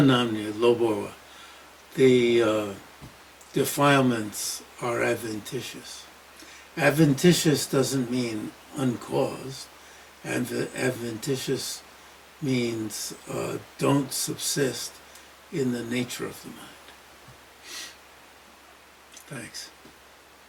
Loborwa. The defilements are adventitious. Adventitious doesn't mean uncaused. Adventitious means don't subsist in the nature of the mind. Thanks.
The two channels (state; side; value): identical; both; correlation 1.00